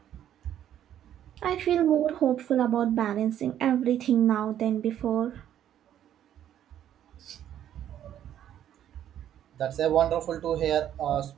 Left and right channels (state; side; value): quieter; left; 10.8 dB